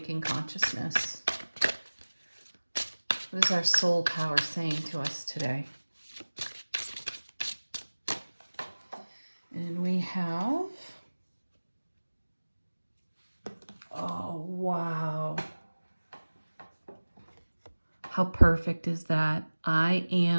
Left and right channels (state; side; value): inverted; both; correlation -1.00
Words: consciousness? What is our soul power saying to us today? And we have, oh, wow. How perfect is that? I